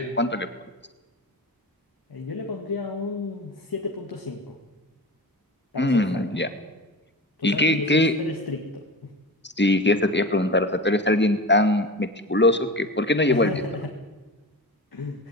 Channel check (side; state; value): both; normal; correlation 0.29